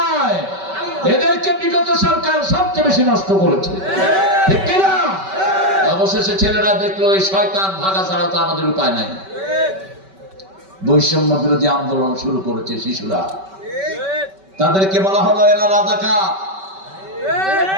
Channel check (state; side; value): late; left; 5.2 ms